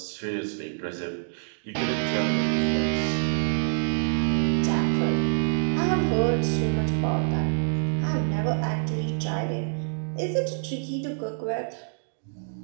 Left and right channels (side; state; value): left; silent; digital silence